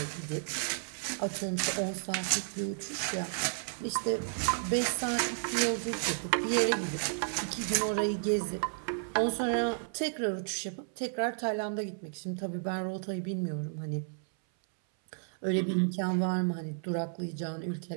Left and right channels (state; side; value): silent; left; 56 dB below the other